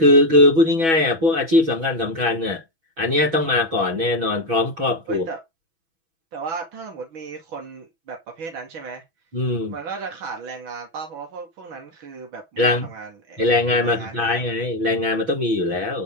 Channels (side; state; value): left; late; 6.1 ms